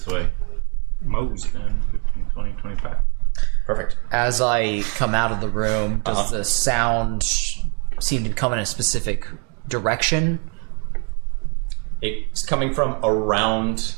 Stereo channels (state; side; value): quieter; left; 35.4 dB